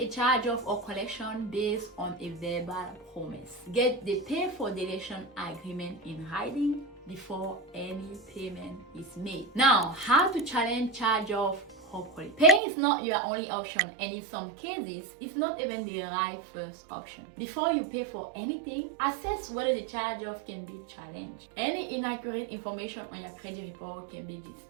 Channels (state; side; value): drops out; left; at 12.6 s